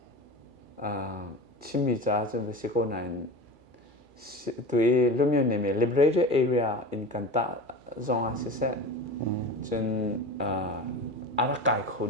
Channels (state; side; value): late; left; 2.3 ms